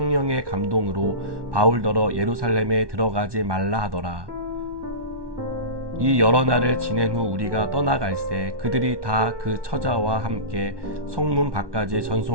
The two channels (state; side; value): late; left; 1.2 ms